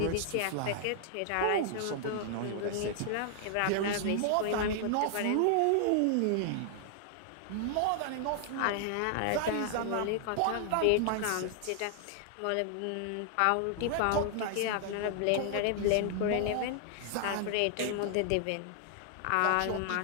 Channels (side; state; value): both; different; correlation 0.00